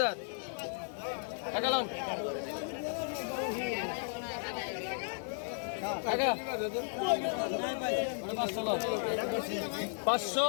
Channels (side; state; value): right; silent; digital silence